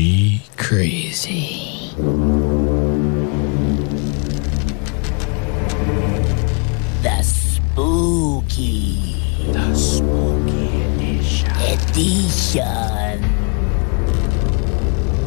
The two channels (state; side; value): quieter; right; 36.5 dB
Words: Crazy. The Spooky Edition.